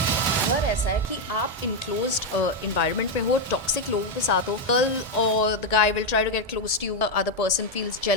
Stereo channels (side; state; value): both; normal; correlation 0.03